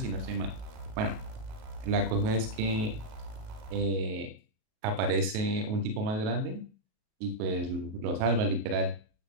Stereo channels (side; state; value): left; late; 37 ms